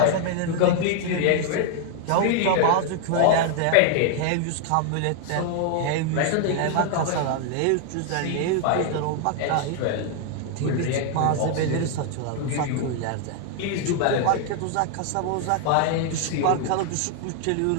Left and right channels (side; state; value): both; different; correlation 0.00